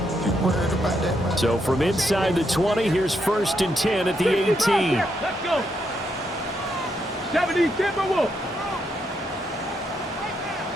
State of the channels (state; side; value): normal; both; correlation 0.79